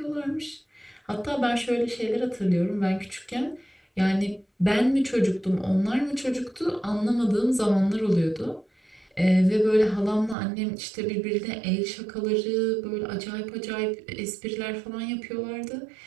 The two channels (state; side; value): drops out; left; at 10.4 s